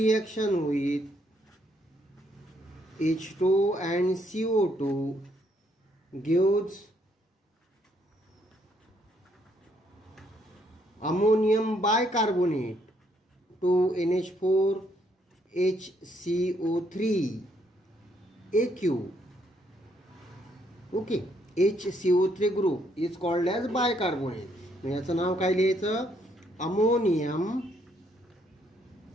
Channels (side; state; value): both; normal; correlation 0.71